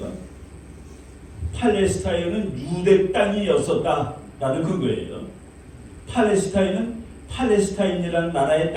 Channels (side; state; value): both; identical; correlation 1.00